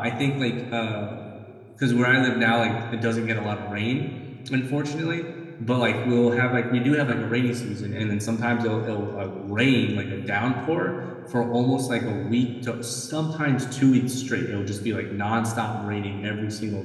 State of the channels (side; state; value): both; identical; correlation 1.00